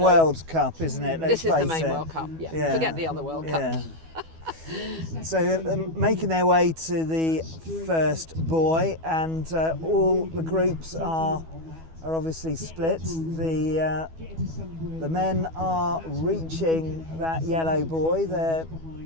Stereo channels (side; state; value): left; late; 12 ms